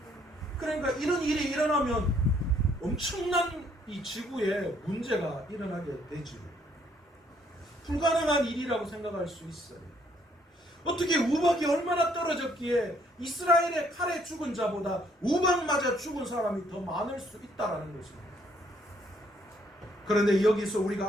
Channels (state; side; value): normal; both; correlation 0.67